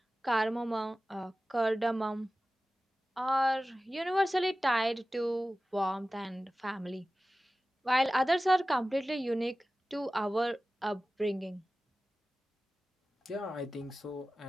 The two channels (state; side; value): normal; both; correlation 0.96